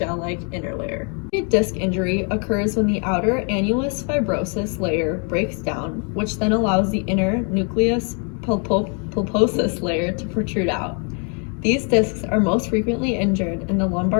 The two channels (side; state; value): right; quieter; 38.6 dB